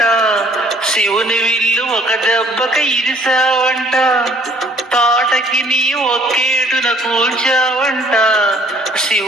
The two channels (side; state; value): both; normal; correlation 0.58